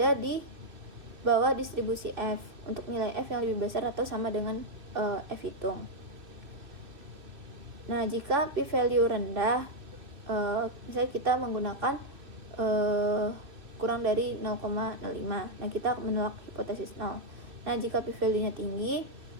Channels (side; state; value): left; late; 2.6 ms